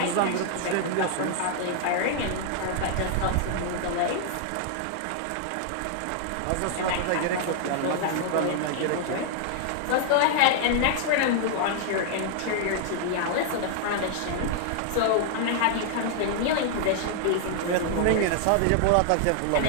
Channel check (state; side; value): different; both; correlation 0.00